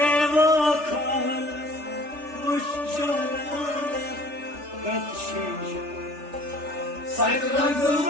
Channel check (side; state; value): left; late; 3.4 ms